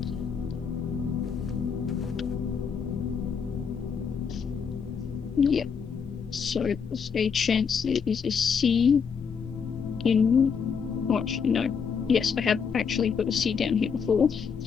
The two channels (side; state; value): right; quieter; 6.3 dB